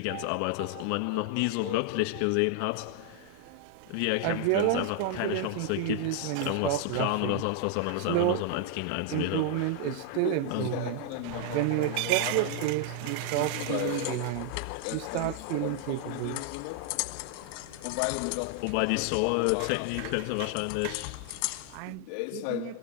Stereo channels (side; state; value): both; different; correlation 0.00